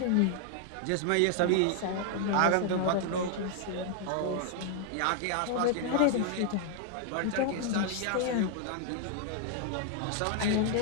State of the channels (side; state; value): both; different; correlation 0.00